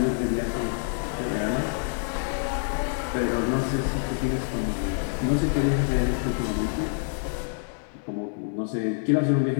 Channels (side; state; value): right; silent; 60 dB below the other